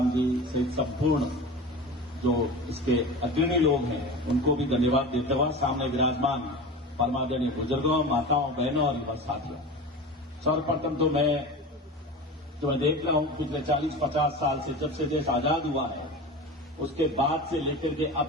जी सहित संपूर्ण जो इसके अग्रणी लोग हैं, उनको भी धन्यवाद देते हुए सामने विराजमान परमादरणीय बुजुर्गों, माताओं, बहनों और युवा साथियों, सर्वप्रथम तो मैं देख रहा हूं पिछले 40-50 साल से, जब से देश आजाद हुआ है, उसके बाद से लेकर के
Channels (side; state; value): both; normal; correlation 0.31